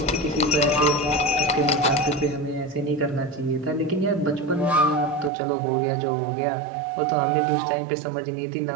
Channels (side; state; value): left; drops out; at 5.3 s